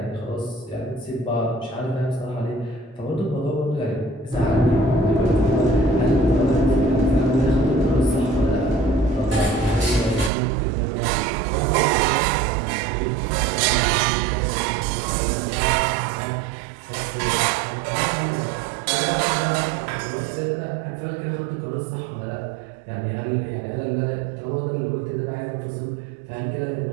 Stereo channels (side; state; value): left; drops out; at 10.3 s